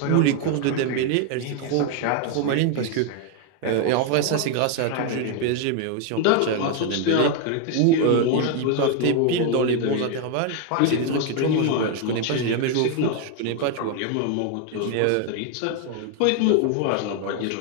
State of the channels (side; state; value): both; different; correlation 0.01